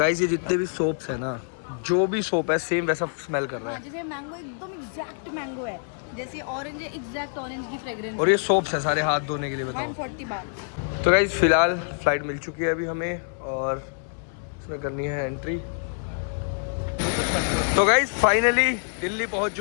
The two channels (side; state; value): right; silent; 61 dB below the other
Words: ये जितने भी सोप्स है ना, जो भी सोप है सेम वैसा स्मेल कर रहा है। जैसे मैंगो एकदम एग्जैक्ट मैंगो है, जैसे ऑरेंज है एग्जैक्ट ऑरेंज की फ्रेग्रेंस। और ये सोप्स है सारे हाथ धोने के लिए, बताओ। 140 बार। तो गाइस फिलहाल फ्लाइट मिल चुकी है अभी हमें और इसमें करनी है एंट्री। तो गाइस फाइनली दिल्ली पहुंच